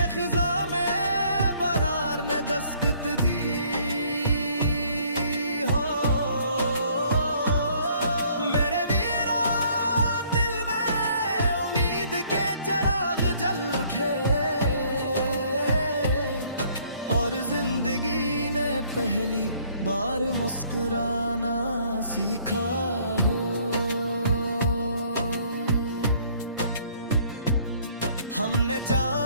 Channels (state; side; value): inverted; both; correlation -0.61